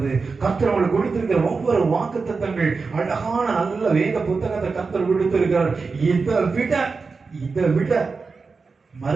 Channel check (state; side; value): quieter; left; 4.5 dB